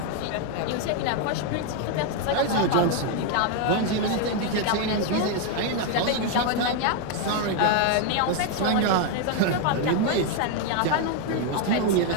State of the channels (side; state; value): both; different; correlation 0.01